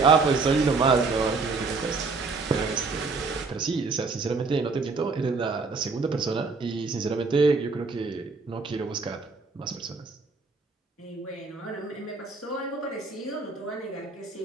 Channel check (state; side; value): quieter; left; 4.2 dB